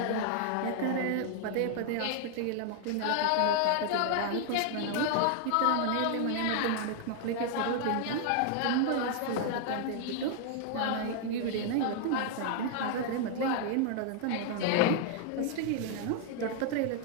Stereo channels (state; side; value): different; both; correlation 0.00